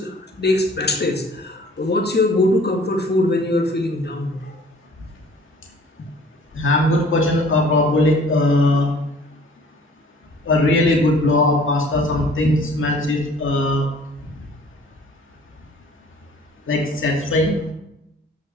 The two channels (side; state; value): both; normal; correlation 0.52